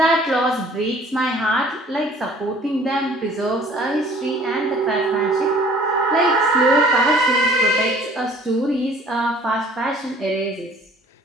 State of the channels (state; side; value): normal; both; correlation 0.52